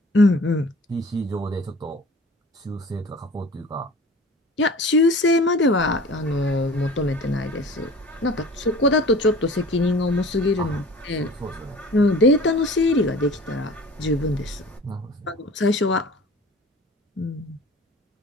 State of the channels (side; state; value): both; normal; correlation 0.43